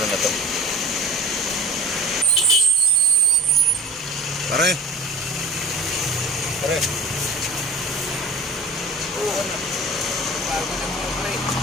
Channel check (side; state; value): both; normal; correlation 0.39